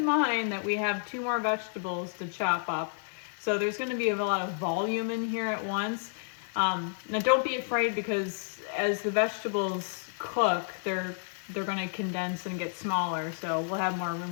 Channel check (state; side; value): silent; right; digital silence